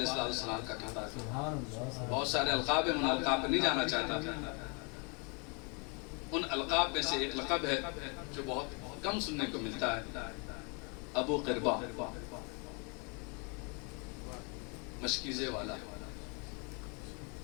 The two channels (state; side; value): quieter; right; 34.2 dB